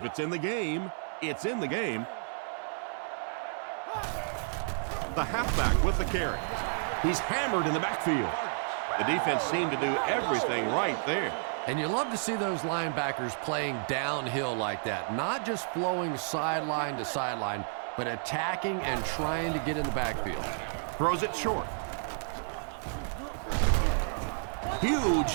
it's in the game, it's in the game. The halfback with the carry. He's hammered in the backfield. The defense seemed to do everything right there. And you love to see those linebackers playing downhill like that, not just flowing sideline to sideline, but attacking and trying to get in the backfield. Throws it short. Huge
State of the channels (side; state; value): left; silent; 57 dB below the other